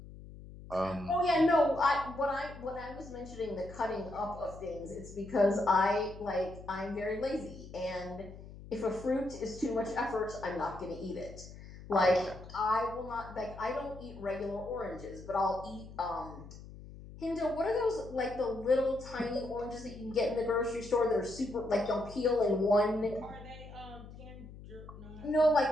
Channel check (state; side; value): noise; left; hum, 15 dB below the sound